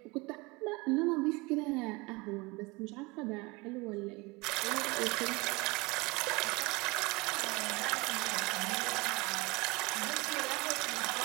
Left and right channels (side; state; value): left; quieter; 25.0 dB